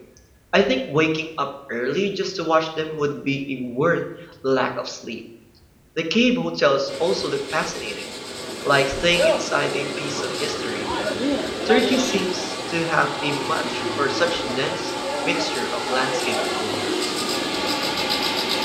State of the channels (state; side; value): identical; both; correlation 1.00